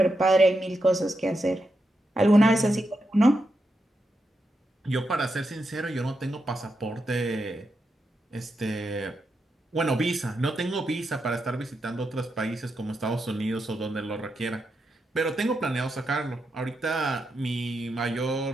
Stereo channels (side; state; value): both; normal; correlation 0.85